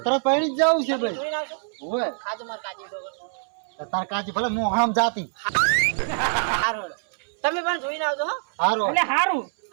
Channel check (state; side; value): silent; left; 62 dB below the other